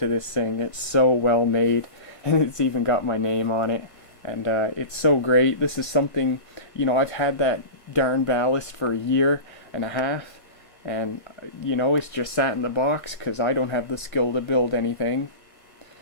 this thing. It's so well made, and it's even got my name on it. And it's so great. This is something, you know, I've had that darn ballast for a year and a half. And, you know, it's just sat in the box because I don't have the skill to build anything.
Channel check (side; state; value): right; late; 1.5 ms